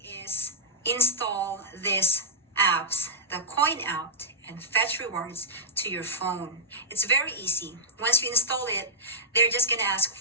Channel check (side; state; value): both; normal; correlation -0.09